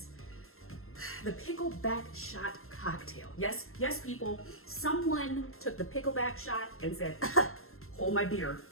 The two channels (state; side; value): late; right; 0.62 ms